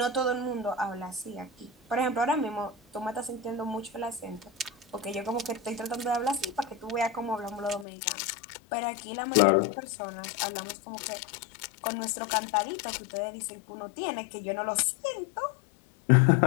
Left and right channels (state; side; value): drops out; right; at 7.9 s